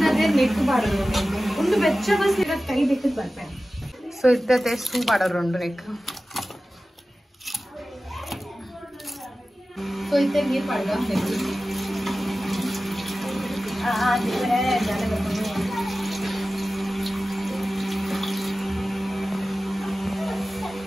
ನೆಕ್ ಬಾಡೋದು ಒಂದು ಬೆಚ್ಚ ಬಸ್ ಇರೋದು ಕೈ ಬೆಕ್ಕದ ಬರ್ಪೇನೆ ಸೊ ಇದ್ದತೆ ಸೂ ಬಾಡೋರು ನೆಕ್ ಸೊ ಇತ್ತೆ ನೀರು ಪಡ್ಗ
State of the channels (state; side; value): normal; both; correlation 0.95